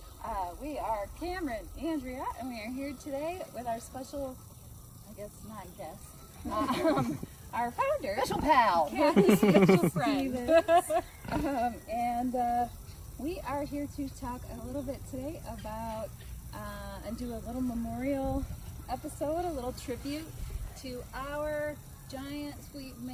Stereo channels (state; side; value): identical; both; correlation 1.00